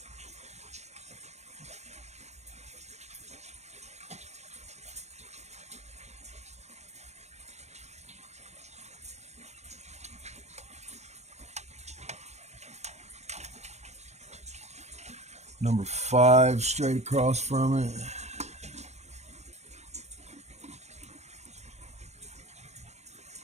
Number 5 straight across from it.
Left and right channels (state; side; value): late; left; 0.32 ms